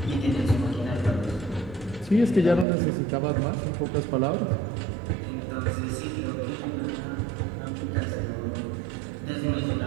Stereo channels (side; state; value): left; drops out; at 2.7 s